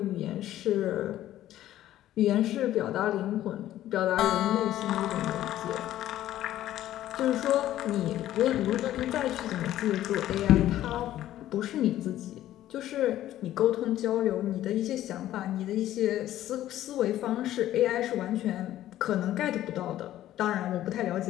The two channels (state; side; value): quieter; right; 13.3 dB